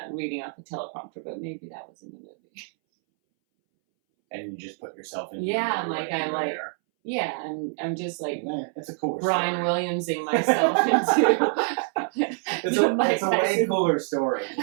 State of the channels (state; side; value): silent; left; 61 dB below the other